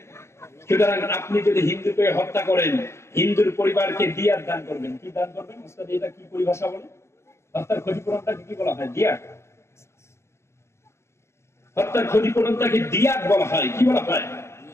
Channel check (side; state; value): right; late; 0.13 ms